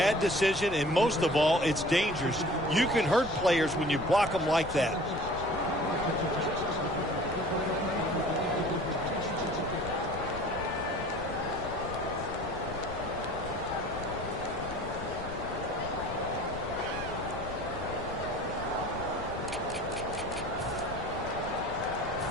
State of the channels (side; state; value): left; noise; rumble, 10 dB below the sound